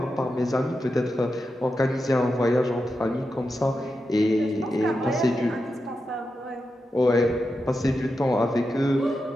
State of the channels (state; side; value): normal; both; correlation 0.89